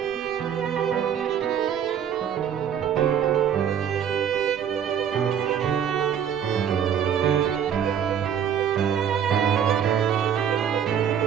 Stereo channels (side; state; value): left; quieter; 8.6 dB